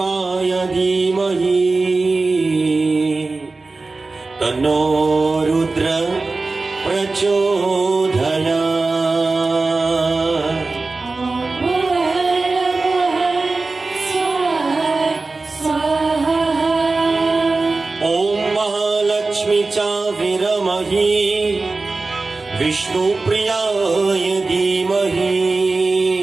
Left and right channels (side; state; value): left; quieter; 3.6 dB